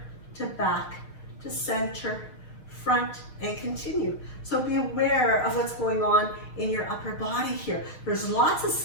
to back to center, front, and continue. So be aware of what's going on in your upper body here. There's lots of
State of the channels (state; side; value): late; right; 6.5 ms